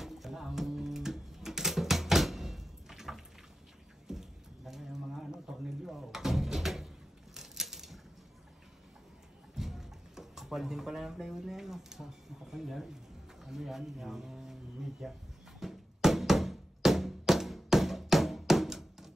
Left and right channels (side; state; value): both; normal; correlation 0.91